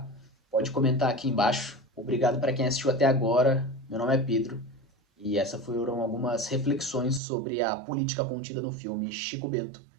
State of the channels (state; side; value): drops out; left; at 7.2 s